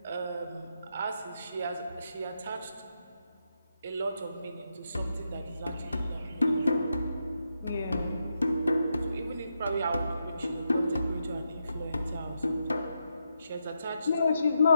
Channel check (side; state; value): both; inverted; correlation -0.84